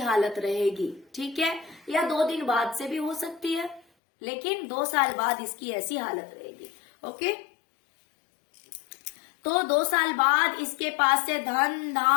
रहेगी, ठीक है, या 2 दिन बाद से भी हो सकती है, लेकिन 2 साल बाद इसकी ऐसी हालत रहेगी। ओके, तो 2 साल बाद इसके पास से धन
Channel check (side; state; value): right; drops out; at 3.8 s